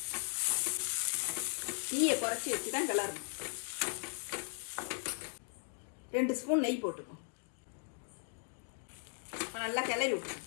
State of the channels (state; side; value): silent; right; 53 dB below the other